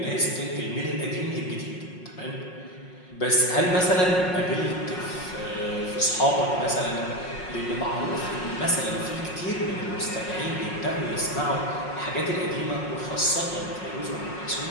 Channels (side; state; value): right; late; 5.5 ms